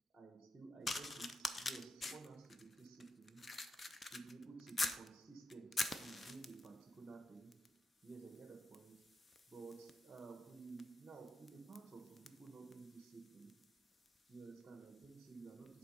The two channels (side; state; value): both; normal; correlation 0.86